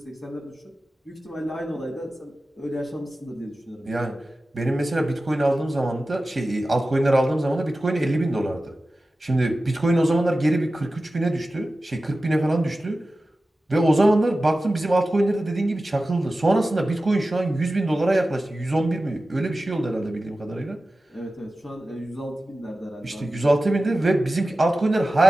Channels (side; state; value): both; normal; correlation 0.95